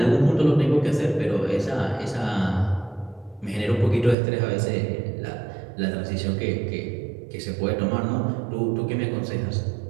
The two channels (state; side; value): drops out; left; at 4.2 s